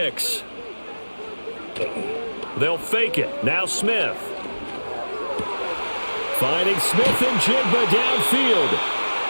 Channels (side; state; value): both; inverted; correlation -1.00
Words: They'll fake it. Now Smith. Finding Smith and Jigba downfield.